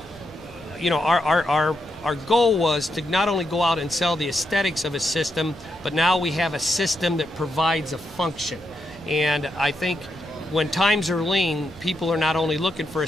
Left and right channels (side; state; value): left; noise; rumble, 28 dB below the sound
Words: our goal was to not only go out and sell the aesthetics of a system, but now we have a system that provides a function. And I think when times are lean, people are not only looking for